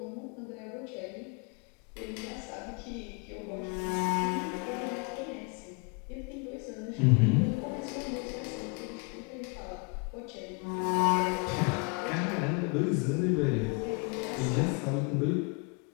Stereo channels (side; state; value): right; quieter; 33.5 dB